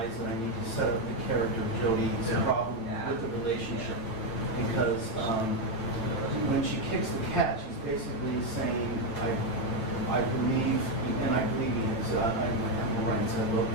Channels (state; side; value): late; right; 9.0 ms